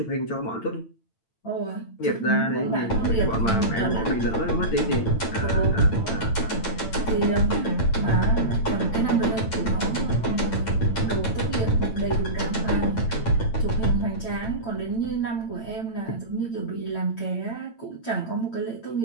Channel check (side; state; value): right; late; 8.9 ms